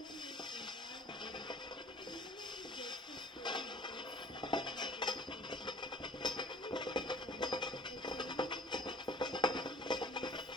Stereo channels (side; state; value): both; normal; correlation 0.51